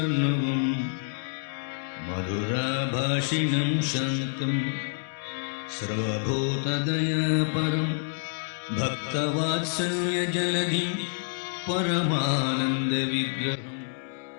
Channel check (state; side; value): silent; right; digital silence